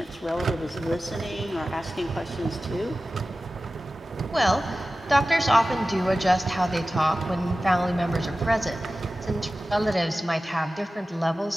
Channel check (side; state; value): both; normal; correlation 0.96